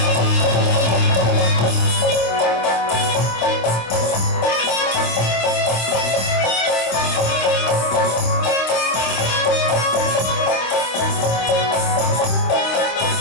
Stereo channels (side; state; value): right; late; 26 ms